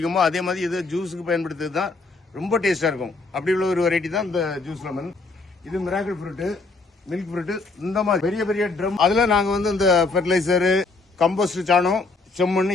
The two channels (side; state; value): right; quieter; 3.6 dB